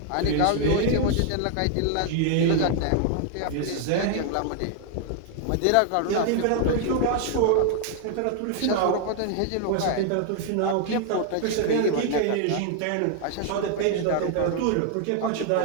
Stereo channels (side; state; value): both; different; correlation 0.00